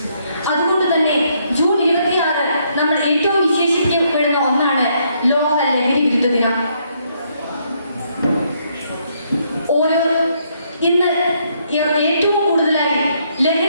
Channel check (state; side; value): inverted; both; correlation -0.72